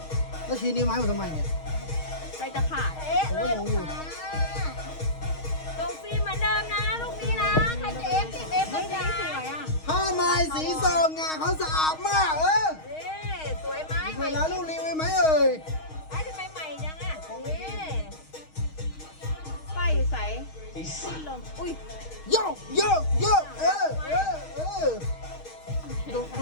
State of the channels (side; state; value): right; late; 6.4 ms